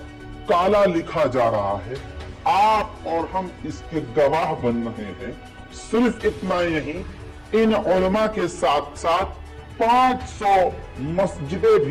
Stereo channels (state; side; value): identical; both; correlation 1.00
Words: काला लिखा जा रहा है। आप और हम इसके गवाह बन रहे हैं। सिर्फ इतना नहीं, इन उलमा के साथ साथ 500 मस्जिदें